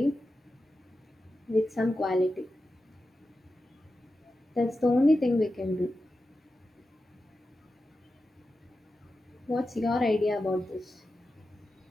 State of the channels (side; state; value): both; normal; correlation 0.91